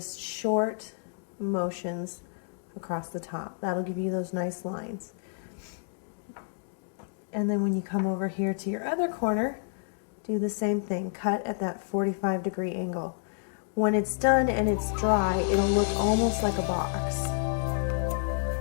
short motions across the top. That'll give you those nice lines. And then when you come over here to your other corner, do the same thing. Cut at that 45-degree angle. When it's done and it's dry, it'll look almost like a box.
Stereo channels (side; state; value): right; silent; digital silence